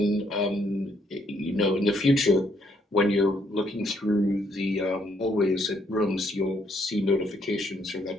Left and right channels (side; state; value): both; normal; correlation 0.71